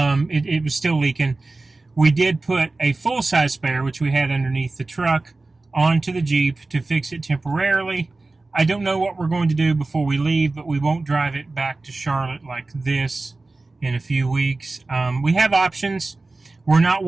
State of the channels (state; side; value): quieter; left; 3.3 dB